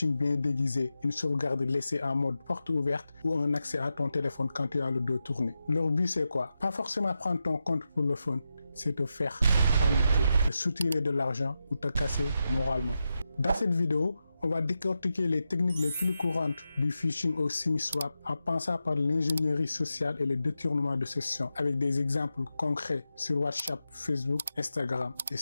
bien déguisé, une sauvegarde laissée en mode porte ouverte ou un accès à ton téléphone quand tu as le dos tourné. Leur but, c'est quoi? Pas forcément prendre ton compte pour le fun, c'est te faire paniquer, te soutirer de l'argent ou te casser moralement. Dans cette vidéo, on va décortiquer les techniques les plus courantes du phishing au SIM-swap en passant par l'ingénierie sociale et le détournement de sessions avec des exemples concrets sur WhatsApp, Facebook, Instagram et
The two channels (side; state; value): both; inverted; correlation -0.89